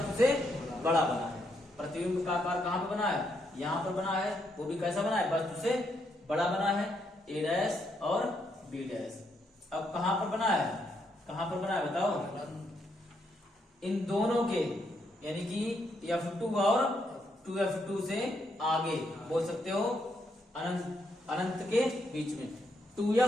से बड़ा बना है। प्रतिबिंब का आकार कहां पे बना है, यहां पर बना है, वो भी कैसा बना है, वस्तु से बड़ा बना है, A' और B'। अब कहां पर बना है बताओ, इन दोनों के यानी कि f2 और 2f2 से आगे बोल सकते हो, अनंत के बीच में,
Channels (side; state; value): both; normal; correlation 0.77